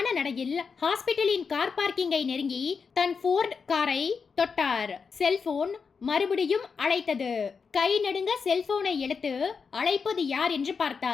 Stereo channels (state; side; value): quieter; right; 5.5 dB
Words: நடையில் ஹாஸ்பிட்டலின் கார் பார்க்கிங்கை நெருங்கி தன் ஃபோர்ட் காரை தொட்டார். செல்போன் மறுபடியும் அழைத்தது. கை நடுங்க செல்போனை எடுத்து அழைப்பது யார் என்று